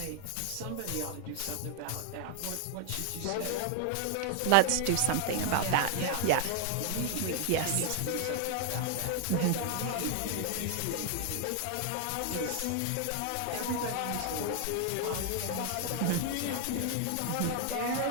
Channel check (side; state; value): both; different; correlation 0.00